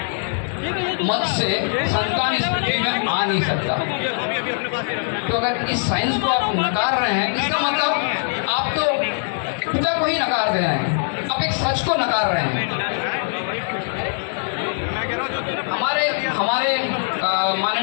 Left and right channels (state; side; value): silent; right; 64 dB below the other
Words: मत से संतान इस पृथ्वी में आ नहीं सकता। तो अगर इस साइंस को आप नकार रहे हैं, इसका मतलब आप तो पिता को ही नकार दे रहे हैं, आप एक सच को नकार रहे हैं। हमारे